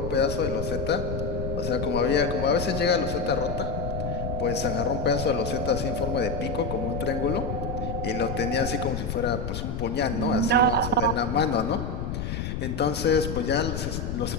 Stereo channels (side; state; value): left; noise; rumble, 4 dB below the sound